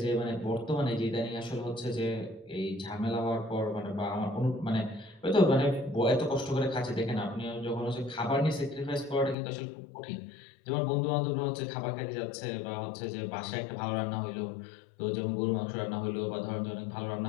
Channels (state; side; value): drops out; right; at 9.3 s